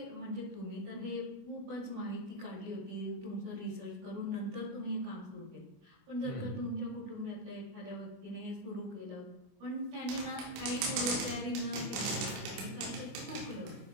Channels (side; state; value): left; late; 24 ms